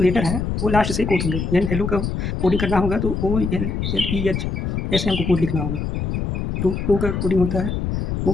है वो लास्ट से कोड होंगे। यानी हेलो का कोडिंग करना होगा तो OLLEH ऐसे हमको कोड लिखना होगा। तो ओ का कोडिंग होता है, ओ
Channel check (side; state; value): left; noise; rumble, 2 dB below the sound